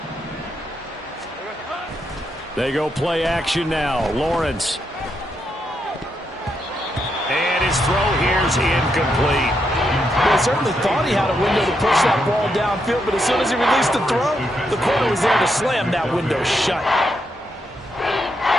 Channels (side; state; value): both; normal; correlation 0.81